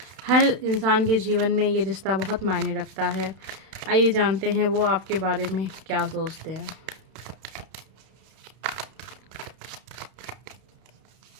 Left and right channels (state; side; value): late; left; 31 ms